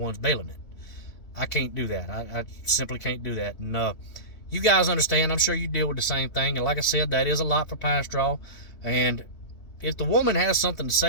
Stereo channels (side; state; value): right; late; 3.2 ms